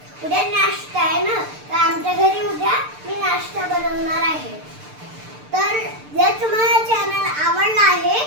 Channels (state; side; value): late; left; 6.7 ms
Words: आहे ना, तर आमच्या घरी उद्या मी नाश्ता बनवणार आहे. तर जर तुम्हाला चॅनल आवडला आहे